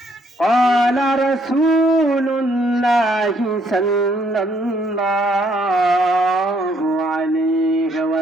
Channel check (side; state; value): both; normal; correlation 0.68